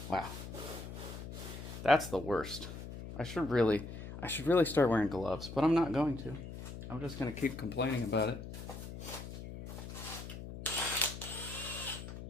Wow. That's the worst. I should really start wearing gloves, but I'm not going to. I'm just gonna keep complaining about it.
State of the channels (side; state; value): left; noise; hum, 10 dB below the sound